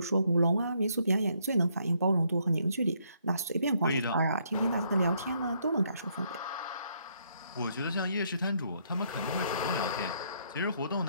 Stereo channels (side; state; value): both; inverted; correlation -0.71